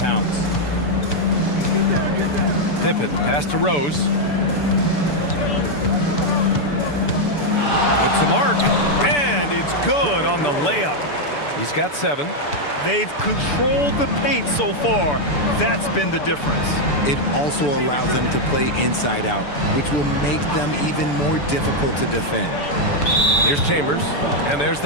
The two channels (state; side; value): late; right; 6.9 ms